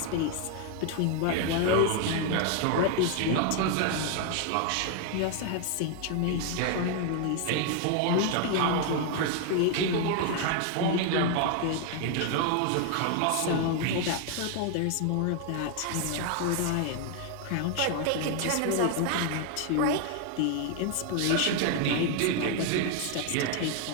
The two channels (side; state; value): both; different; correlation 0.00